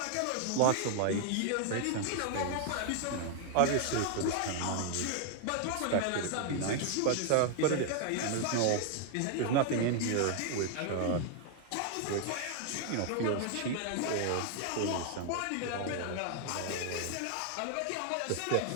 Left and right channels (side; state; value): both; different; correlation 0.00